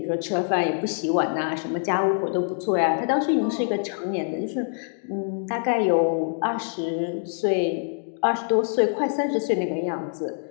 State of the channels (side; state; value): right; silent; digital silence